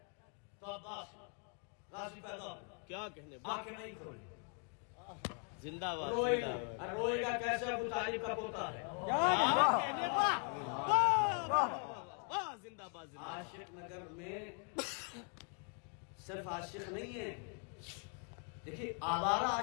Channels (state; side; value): quieter; right; 39.7 dB